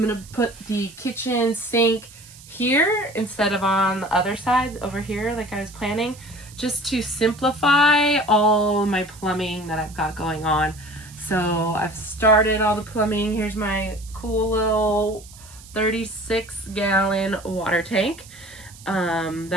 going to put the kitchen sink here instead of on the other side over here like I was planning, just to simplify all my plumbing that I've got going on. So I've started all the plumbing. Here's my cool little 36-gallon water tank.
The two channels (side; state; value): right; noise; hiss, 20 dB below the sound